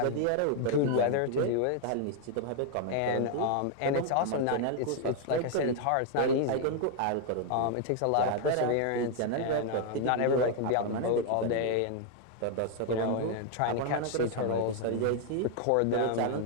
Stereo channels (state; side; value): different; both; correlation 0.00